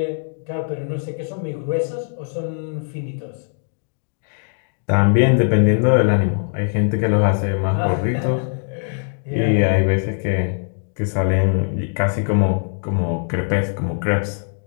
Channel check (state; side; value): silent; right; digital silence